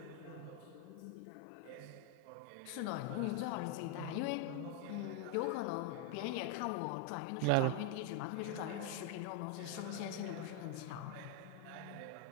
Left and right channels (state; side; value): different; both; correlation 0.00